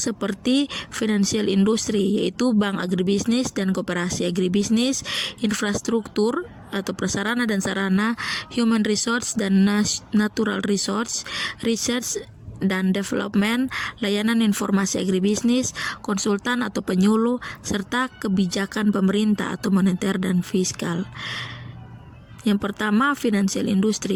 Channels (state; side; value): identical; both; correlation 1.00